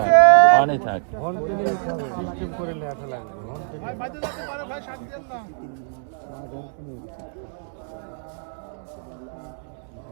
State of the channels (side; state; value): left; silent; digital silence